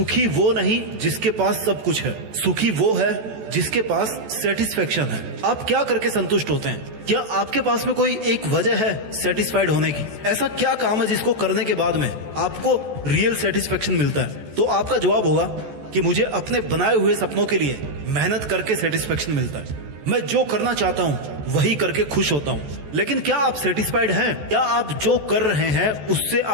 वो नहीं जिसके पास सब कुछ है, सुखी वो है जिसके पास सेटिस्फेक्शन है। आप क्या करके संतुष्ट होते हैं? क्या आपके पास में कोई एक वजह है सेटिस्फाइड होने की? ऐसा क्या काम है जिसको करने के बाद में आपको रियल सेटिस्फेक्शन मिलता है? तो आपका जवाब होगा कि मुझे अपने बनाए हुए सपनों के लिए मेहनत करके सेटिस्फेक्शन मिलता है। मैं जो करना चाहता हूं वही करके खुश होता हूं। लेकिन क्या आप सेटिस्फाइड हैं? क्या आप जो कर रहे हैं उससे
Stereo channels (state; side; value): late; left; 14 ms